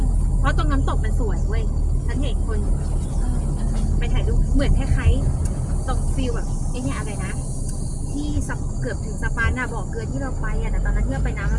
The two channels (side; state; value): both; identical; correlation 1.00